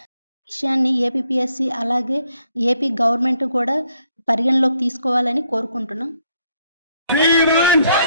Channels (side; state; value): both; inverted; correlation -0.71